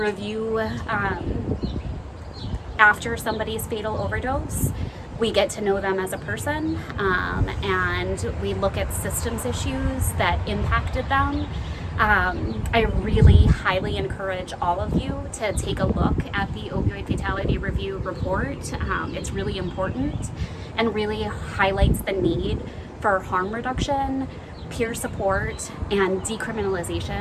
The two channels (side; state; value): both; identical; correlation 1.00